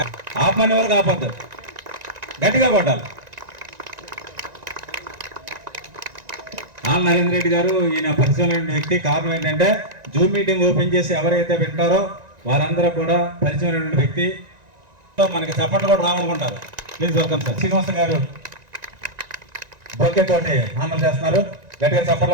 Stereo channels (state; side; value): late; left; 1.9 ms